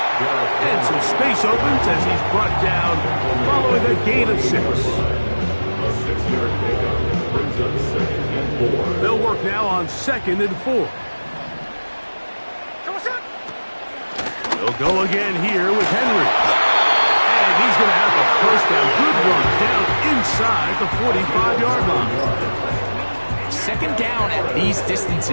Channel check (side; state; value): both; inverted; correlation -1.00